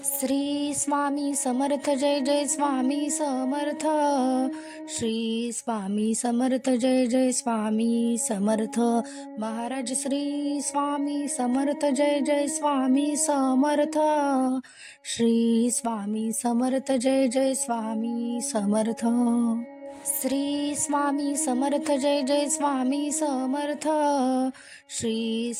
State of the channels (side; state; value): both; identical; correlation 1.00